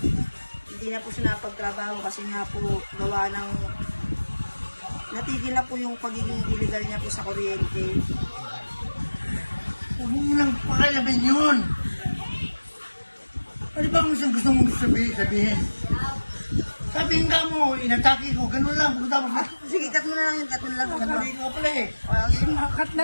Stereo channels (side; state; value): both; inverted; correlation -1.00